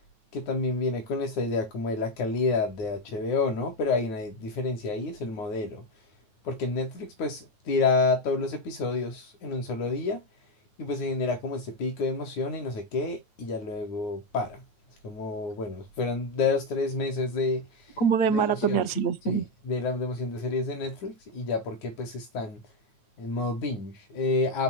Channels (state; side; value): late; right; 9.2 ms